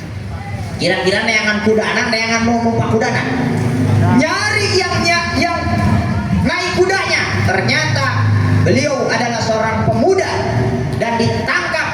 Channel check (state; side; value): identical; both; correlation 1.00